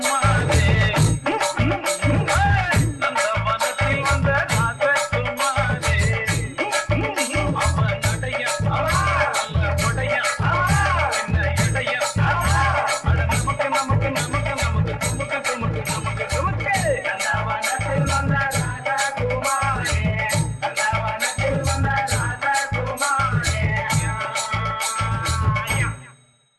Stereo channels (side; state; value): both; identical; correlation 1.00